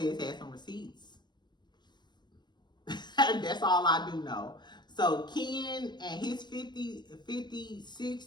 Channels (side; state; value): right; late; 0.21 ms